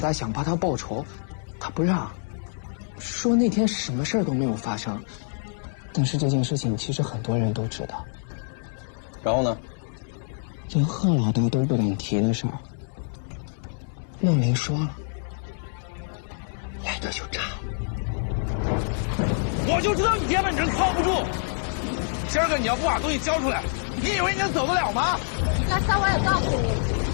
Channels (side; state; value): right; silent; digital silence